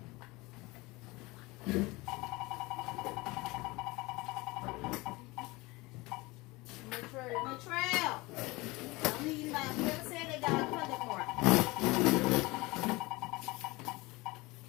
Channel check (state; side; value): quieter; right; 22.7 dB